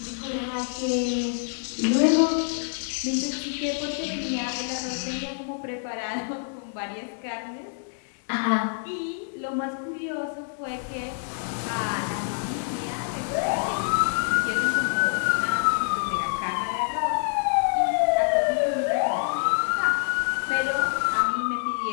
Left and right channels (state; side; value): silent; right; digital silence